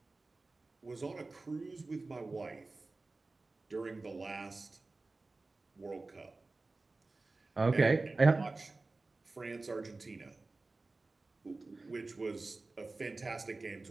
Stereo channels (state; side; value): quieter; left; 3.4 dB